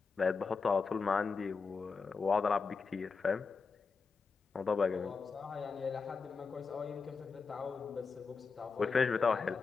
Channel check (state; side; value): quieter; right; 4.9 dB